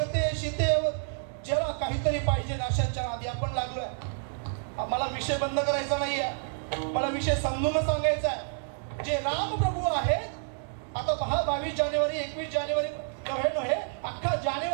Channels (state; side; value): silent; left; digital silence